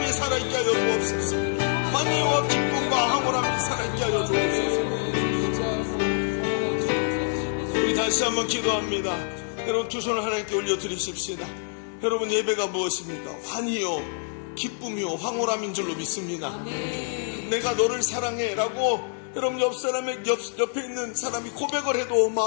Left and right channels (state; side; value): silent; right; 61 dB below the other